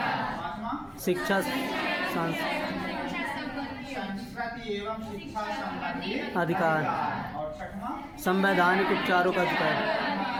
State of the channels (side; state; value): both; identical; correlation 1.00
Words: पांचवा शिक्षा संस्कृति एवं शिक्षा संबंधी अधिकार। और छठवां संवैधानिक उपचारों का अधिकार,